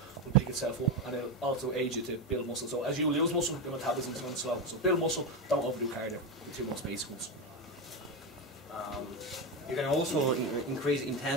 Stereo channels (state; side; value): normal; both; correlation 0.14